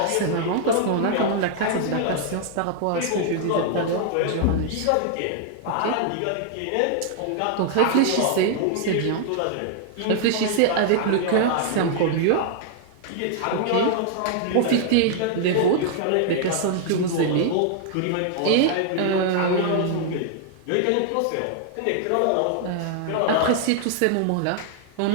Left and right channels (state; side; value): different; both; correlation -0.01